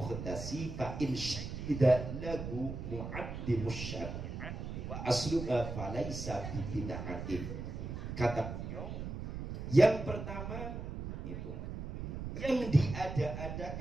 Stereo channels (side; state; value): right; noise; rumble, 6 dB below the sound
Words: fa in syahida lahu mu'addimus syari'ah wa asluha falaysa bi bid'atin. Kata yang pertama itu yang